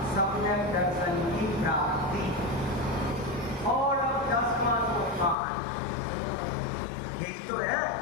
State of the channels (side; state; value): right; drops out; at 5.4 s